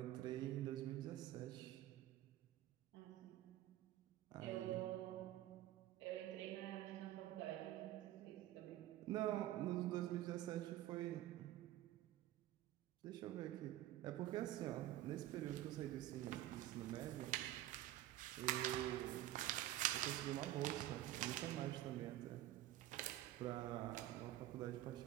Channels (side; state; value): left; quieter; 14.3 dB